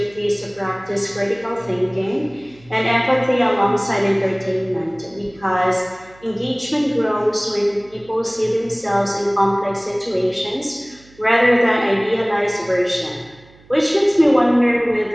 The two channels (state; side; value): noise; right; hum, 27 dB below the sound